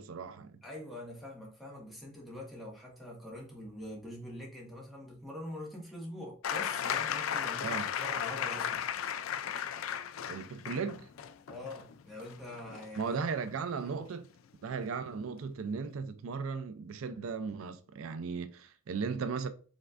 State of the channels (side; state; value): both; normal; correlation 0.16